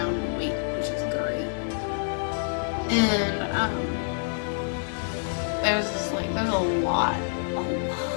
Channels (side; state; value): right; silent; digital silence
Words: in weight, which is great. And there's just like, there's a